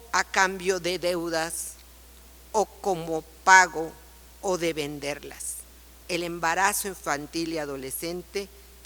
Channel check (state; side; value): identical; both; correlation 1.00